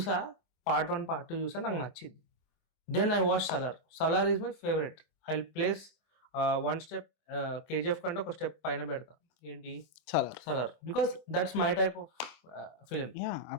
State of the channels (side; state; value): right; late; 25 ms